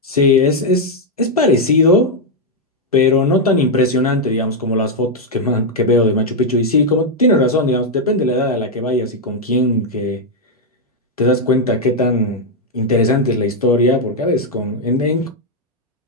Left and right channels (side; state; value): both; normal; correlation 0.00